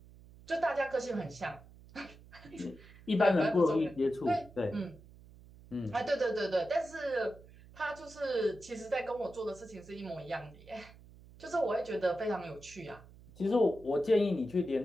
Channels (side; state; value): right; noise; hum, 21 dB below the sound